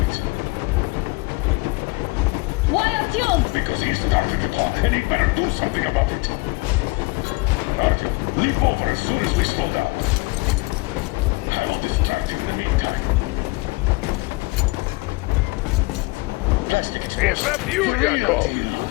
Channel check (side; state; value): right; quieter; 25.4 dB